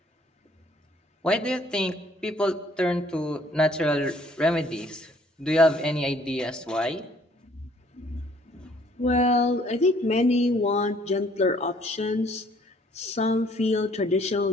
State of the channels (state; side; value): normal; both; correlation 0.61